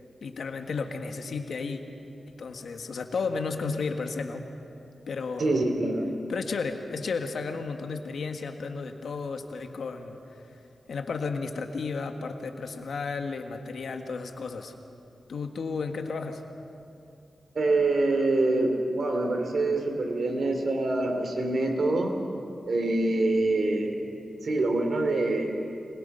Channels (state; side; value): normal; both; correlation 0.87